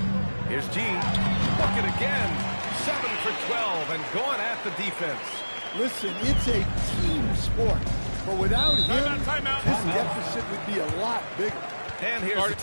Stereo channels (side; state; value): both; inverted; correlation -1.00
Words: Here's G. Look it again. 7 for 12 and going at the defense. Listen, it's a team sport. But without him, Timeout. this deficit would be a lot bigger. And here's a